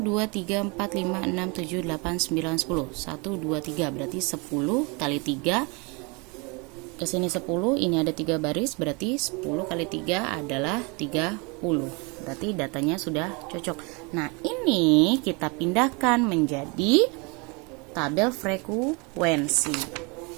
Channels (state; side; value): quieter; left; 30.1 dB